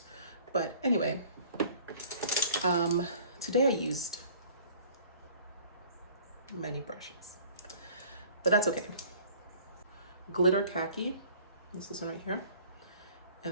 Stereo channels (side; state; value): both; inverted; correlation -0.51